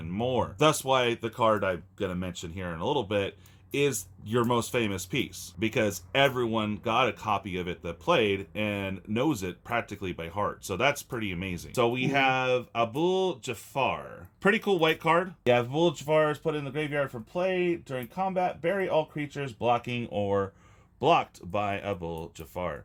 more. That's why the card I'm going to mention here in a little bit is your most famous piece, because everyone got a copy of it that played and knows it practically by heart. So that's pretty amazing. So we have Abul Jafar. Pretty cool white card. Yeah, Abul Jafar is put in the graveyard for play. During combat, bury all creatures blocking or blocked by Abul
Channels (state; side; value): identical; both; correlation 1.00